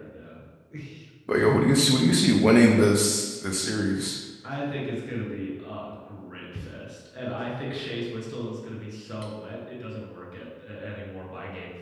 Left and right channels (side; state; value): both; identical; correlation 1.00